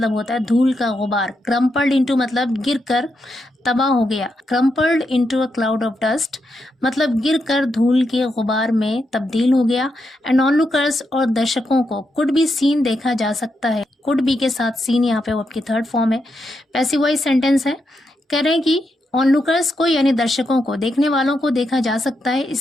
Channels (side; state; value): both; normal; correlation 0.83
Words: होता है धूल का गुबार, क्रम्पल्ड इनटू मतलब गिरकर तबाह हो गया, crumpled into a cloud of dust मतलब गिरकर धूल के गुबार में तब्दील हो गया। एंड ऑनलुकर्स और दर्शकों को कुड बी सीन देखा जा सकता है, कुड बी के साथ सीन यहाँ पे वो आपकी थर्ड फॉर्म है, पैसिव वॉइस सेंटेंस है। कह रहे हैं कि ऑनलुकर्स को यानी दर्शकों को, देखने वालों को देखा जा सकता है